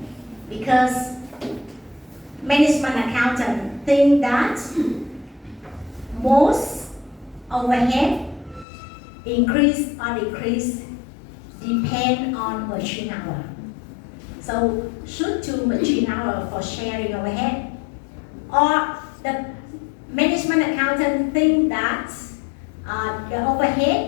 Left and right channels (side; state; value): right; drops out; at 8.7 s